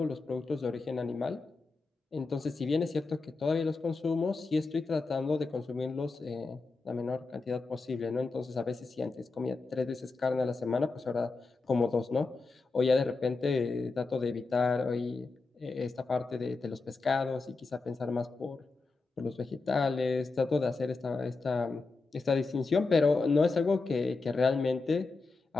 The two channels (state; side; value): quieter; right; 3.9 dB